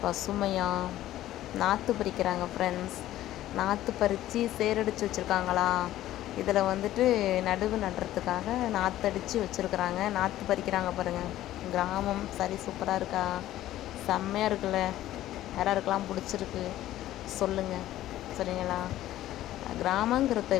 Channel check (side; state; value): right; quieter; 14.0 dB